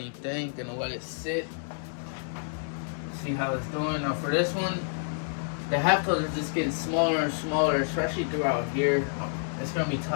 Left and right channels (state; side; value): silent; right; digital silence